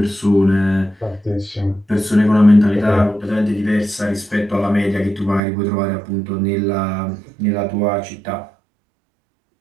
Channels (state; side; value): drops out; left; at 5.4 s